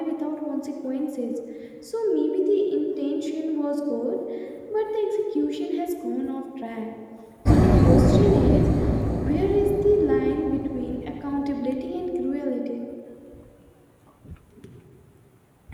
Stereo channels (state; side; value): identical; both; correlation 1.00